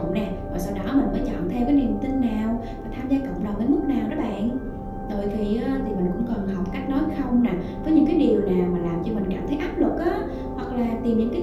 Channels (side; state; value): both; identical; correlation 1.00